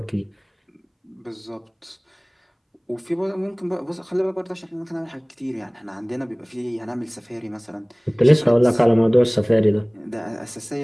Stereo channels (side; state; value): both; identical; correlation 1.00